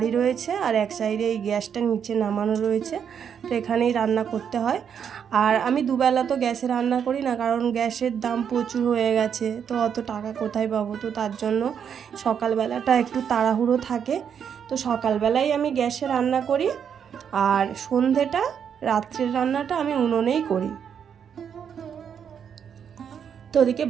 রয়েছে আর এক সাইডে এই গ্যাসটা নিচে নামানো রয়েছে। তো এখানেই রান্না করতে হয়। আর আমি দুবেলা তো গ্যাসে রান্না করি না, কারণ গ্যাসের দাম প্রচুর হয়ে গেছে, তো অত টাকা কোথায় পাবো। তো তার জন্য সকালবেলাটা একটু তাড়াহুড়ো থাকে। তো সকালবেলাই আমি গ্যাসে রান্না করি, আর সন্ধেটা, রাত্রের রান্নাটা আমি উনুনেই করি। তো ওদিকে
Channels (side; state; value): left; quieter; 7.8 dB